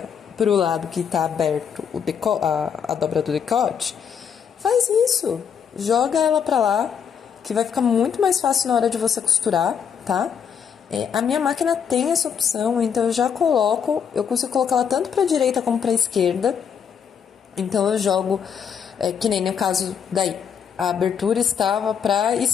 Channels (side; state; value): right; quieter; 7.5 dB